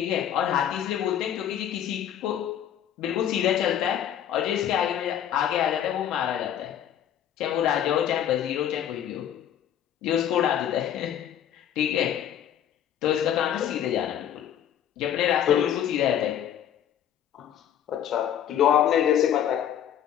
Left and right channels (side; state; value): right; quieter; 10.1 dB